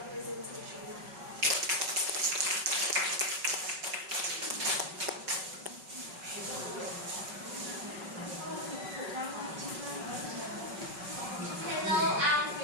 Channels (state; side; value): late; left; 5.3 ms